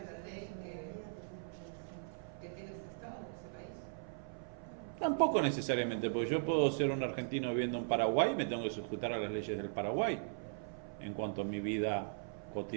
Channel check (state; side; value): silent; left; 52 dB below the other